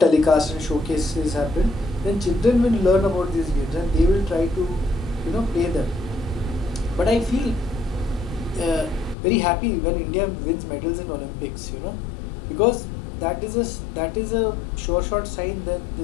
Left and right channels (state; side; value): drops out; right; at 9.2 s